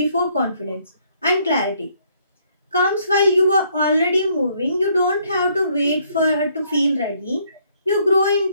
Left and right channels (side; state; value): both; inverted; correlation -0.67